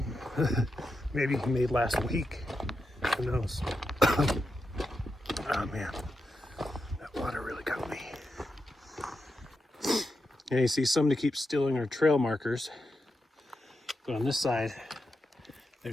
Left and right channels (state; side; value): normal; both; correlation 0.87